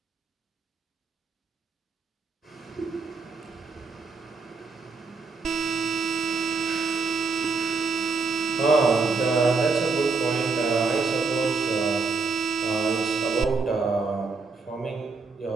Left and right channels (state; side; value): quieter; left; 4.3 dB